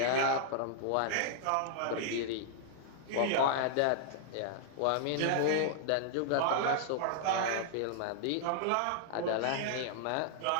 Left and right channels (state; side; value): different; both; correlation -0.01